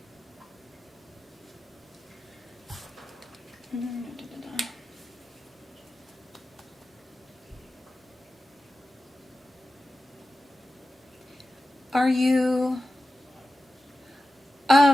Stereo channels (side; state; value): both; normal; correlation 0.94